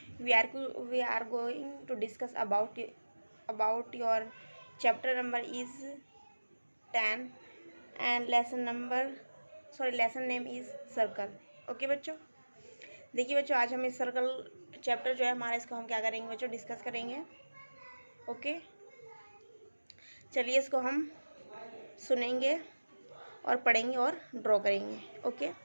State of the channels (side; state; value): both; inverted; correlation -1.00